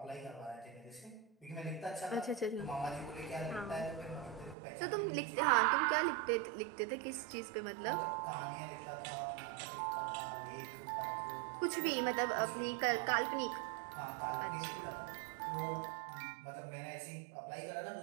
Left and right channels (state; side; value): drops out; left; at 4.5 s